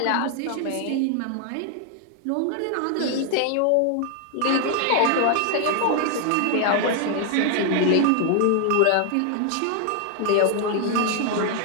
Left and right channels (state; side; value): different; both; correlation 0.00